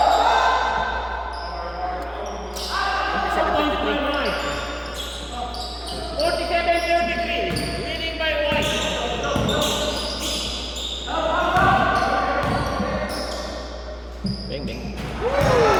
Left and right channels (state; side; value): identical; both; correlation 1.00